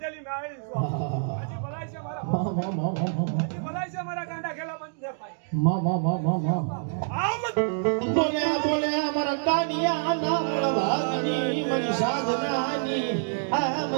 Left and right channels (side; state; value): left; silent; digital silence